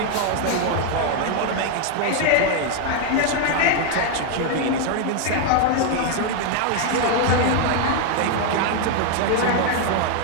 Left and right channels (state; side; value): different; both; correlation 0.01